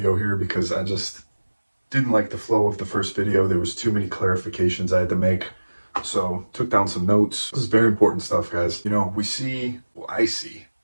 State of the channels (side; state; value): both; inverted; correlation -1.00